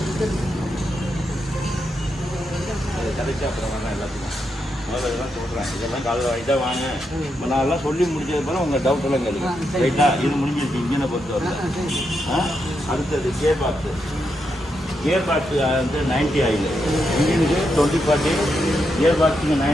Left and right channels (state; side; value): normal; both; correlation 0.83